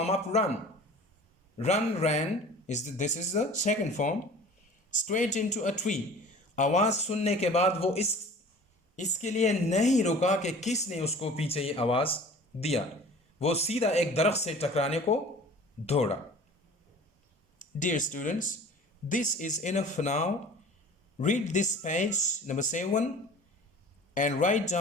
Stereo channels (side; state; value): both; normal; correlation 0.44